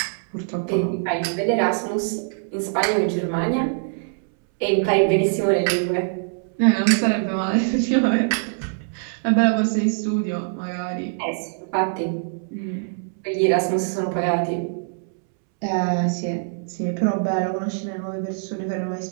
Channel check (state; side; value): silent; left; 63 dB below the other